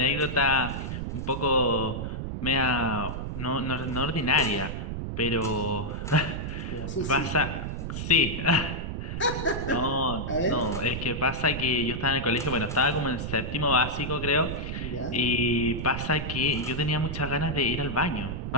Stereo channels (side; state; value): right; noise; rumble, 5 dB below the sound